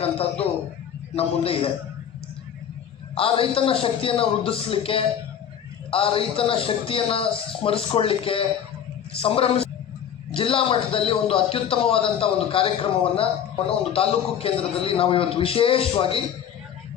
ನಮ್ಮ ಮುಂದೆ ಇದೆ. ಆ ರೈತನ ಶಕ್ತಿಯನ್ನು ವೃದ್ಧಿಸಲಿಕ್ಕೆ, ಆ ರೈತನ ಶಕ್ತಿಯನ್ನು ಸ್ಮರಿಸ್ಕೊಳ್ಳಿಕ್ಕೆ ಜಿಲ್ಲಾ ಮಟ್ಟದಲ್ಲಿ ಒಂದು ಅತ್ಯುತ್ತಮವಾದಂಥ ಒಂದು ಕಾರ್ಯಕ್ರಮವನ್ನು ಒಂದು ತಾಲೂಕು ಕೇಂದ್ರದಲ್ಲಿ ನಾವು ಇವತ್ತು ವಿಶೇಷವಾಗಿ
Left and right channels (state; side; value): quieter; right; 8.9 dB